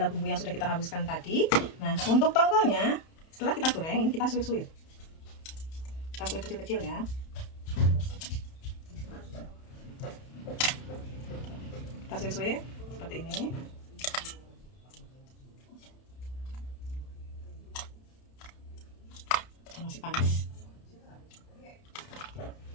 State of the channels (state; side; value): late; right; 31 ms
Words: bumbu yang sudah kita haluskan tadi. Nah, untuk tongkolnya, setelah kita goreng, ini kita suir-suir. Kita suir kecil-kecil ya. Kita suir-suir seperti ini. Masih panas.